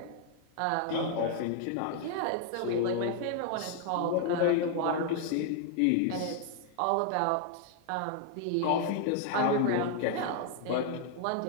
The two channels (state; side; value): different; both; correlation 0.00